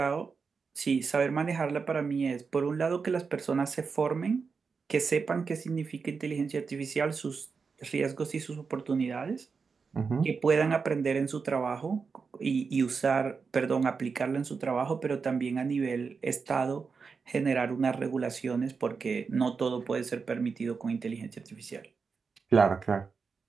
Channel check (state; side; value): quieter; left; 5.2 dB